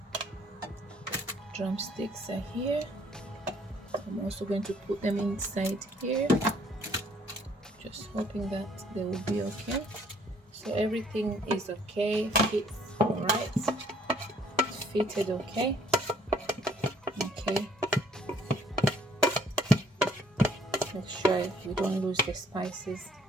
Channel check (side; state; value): both; normal; correlation 0.62